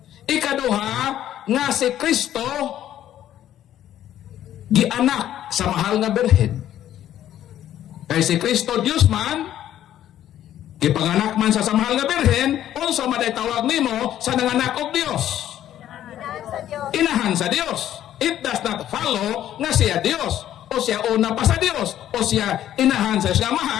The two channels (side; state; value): right; quieter; 11.7 dB